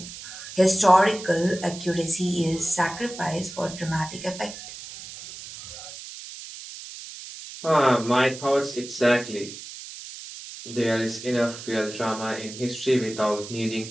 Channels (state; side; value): noise; right; hiss, 13 dB below the sound